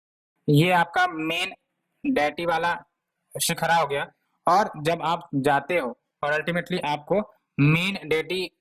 ये आपका मेन डेटी वाला शिखरा हो गया। और जब आप जाते हो और अल्टीमेटली आपको मेन डेटी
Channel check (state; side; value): identical; both; correlation 1.00